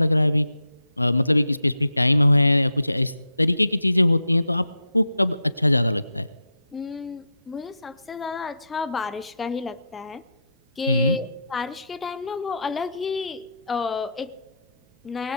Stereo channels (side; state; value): both; inverted; correlation -0.79